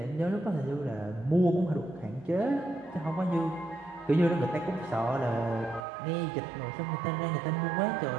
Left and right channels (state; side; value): drops out; left; at 5.8 s